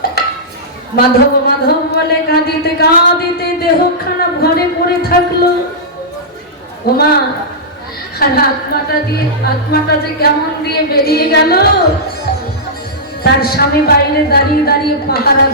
মাধব মাধব বলে কাঁদিতে কাঁদিতে দেহ খারাপ ঘরে পড়ে থাকলো। ওমা, আর আত্মাটা যে কেমন দিয়ে বেরিয়ে গেল। তার স্বামী বাইরে দাঁড়িয়ে দাঁড়িয়ে পাহারা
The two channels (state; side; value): normal; both; correlation -0.13